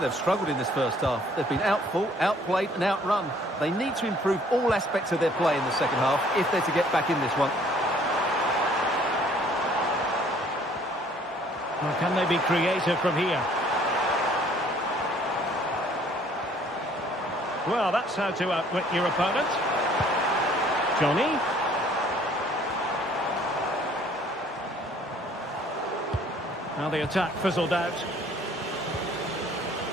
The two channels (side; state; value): both; normal; correlation 0.58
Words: struggled in this first half. They've been outfought, outplayed and outrun. They need to improve all aspects of their play in the second half if they're to get back in this one. Well, can they be creative from here? Well, that's how to outwit your opponent. Johnny. Now the attack fizzled out.